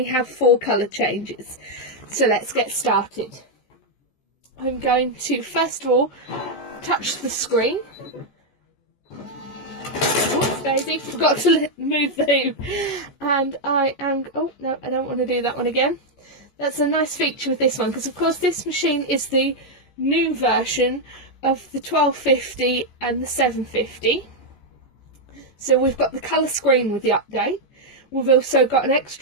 have 4 colour changes. So let's get started. I'm going to first of all touch the screen. Oops, Daisy, forgot to move the hoop. And I am, oh no, I don't want to do that one again. That's a nice feature with this one, because of course this machine is the new version of the 1250 and the 750. So we've got the colour screen with the update. We've also got an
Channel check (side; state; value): right; late; 14 ms